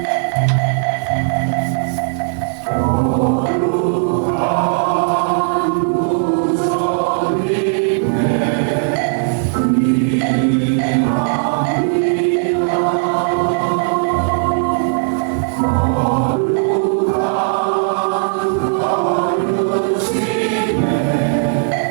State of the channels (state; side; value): silent; left; 63 dB below the other